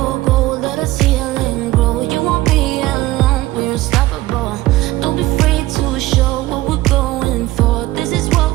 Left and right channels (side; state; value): left; quieter; 17.5 dB